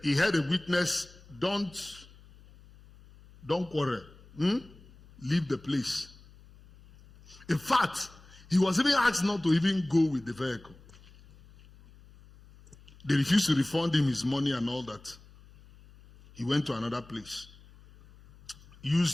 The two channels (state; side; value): noise; left; hum, 23 dB below the sound